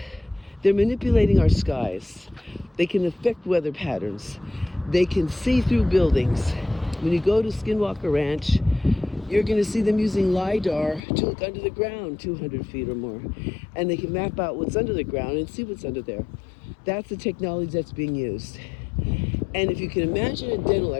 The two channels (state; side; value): drops out; right; at 11.0 s